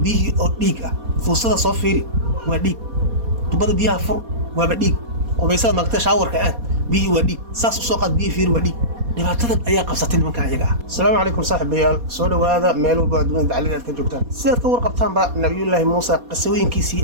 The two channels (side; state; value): left; late; 4.2 ms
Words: biyihii oo dhiig ah fuusada soo fiiri waa dhiig tubada biyaha fur waa dhiig qubaysada maaqta shaawarka aad biyihii waa dhiig saas u soo qaad biyihii fiiri waa dhiig dhibaatadan ayaa qabsatay nimanka ayaga ah. Assalaamu calaykum saaxiibayaal soo dhawaada meel walba adduunka dacalada ka joogtaan sidaad ka warqabtaan ba nabiyullaahi Muusa qisooyinkiisii